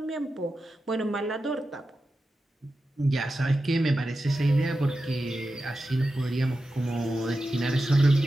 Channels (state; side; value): normal; both; correlation 0.91